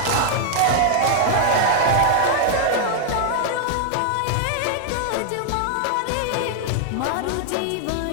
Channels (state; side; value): different; both; correlation 0.00